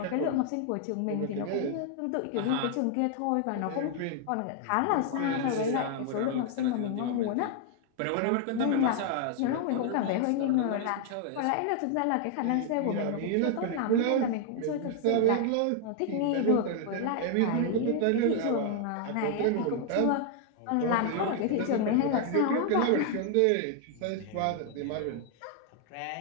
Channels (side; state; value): both; different; correlation 0.00